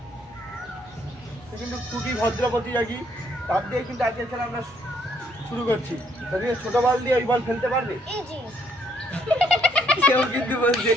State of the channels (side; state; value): both; normal; correlation 0.68